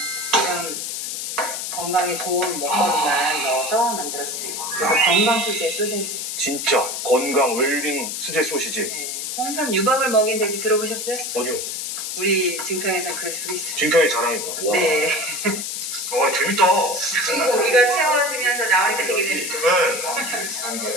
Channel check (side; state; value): left; noise; hiss, 4 dB below the sound